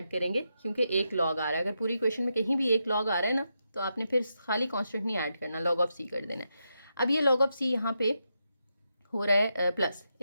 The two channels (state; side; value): inverted; both; correlation -0.85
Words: करेंगे, क्योंकि एक log आ रहा है। अगर पूरी इक्वेशन में कहीं भी एक log आ रहा है ना तो आपने फिर खाली कांस्टेंट नहीं ऐड करना, log ऑफ c कर देना है। अब ये log ऑफ c यहाँ पे हो रहा है प्लस,